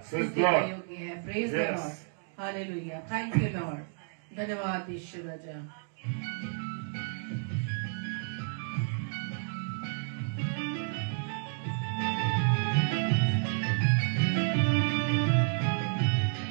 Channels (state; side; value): silent; left; 57 dB below the other